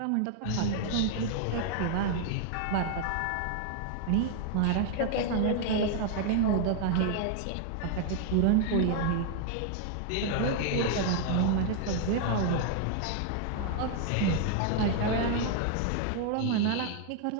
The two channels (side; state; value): both; different; correlation 0.00